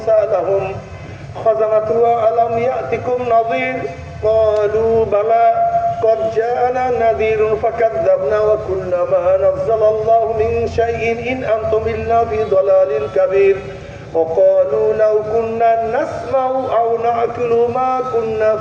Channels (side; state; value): both; identical; correlation 1.00